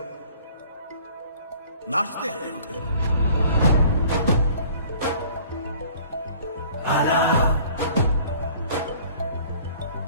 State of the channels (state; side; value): inverted; both; correlation -0.51